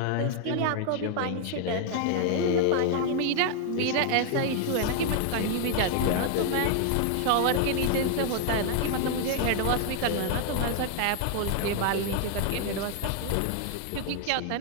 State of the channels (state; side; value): different; both; correlation 0.00